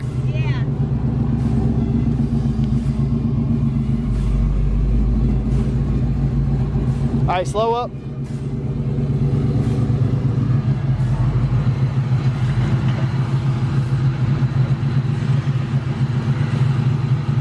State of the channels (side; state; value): both; identical; correlation 1.00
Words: Yeah. All right, slow up.